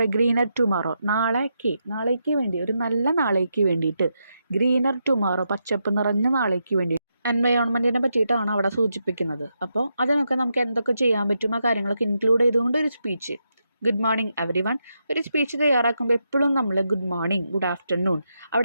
a greener tomorrow. നാളേക്ക് വേണ്ടി, ഒരു നല്ല നാളേക്ക് വേണ്ടിയിട്ട്, ഗ്രീനർ ടുമോറോ, പച്ചപ്പ് നിറഞ്ഞ നാളേക്ക് വേണ്ടി എൻവയോൺമെൻറ്റിനെ പറ്റിയിട്ടാണ് അവിടെ സൂചിപ്പിക്കുന്നത്. അപ്പോൾ അതിനൊക്കെ നമുക്ക് എന്തൊക്കെ ചെയ്യാൻ പറ്റും, ആ കാര്യങ്ങളൊക്കെ ഇൻക്ലൂഡ് ചെയ്തുകൊണ്ട് ഒരു speech. Good morning every one. ഒരു സ്പീച്ച് തയ്യാറാക്കുമ്പോൾ എപ്പോഴും നമ്മൾ ഗുഡ് മോർണിംഗ്, ഗുഡ് ആഫ്റ്റർനൂൺ,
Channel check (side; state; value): both; inverted; correlation -0.84